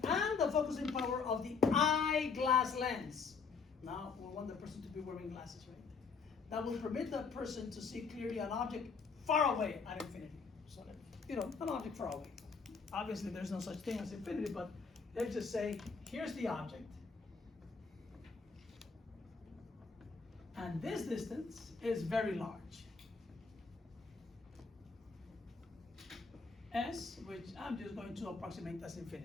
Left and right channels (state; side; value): quieter; right; 5.1 dB